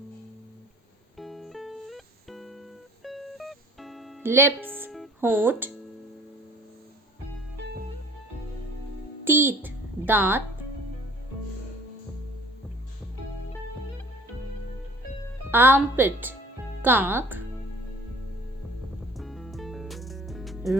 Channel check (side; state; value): both; normal; correlation 0.50